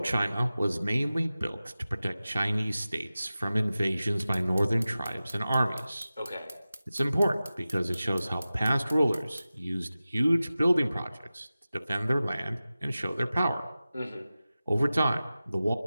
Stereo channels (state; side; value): inverted; both; correlation -0.95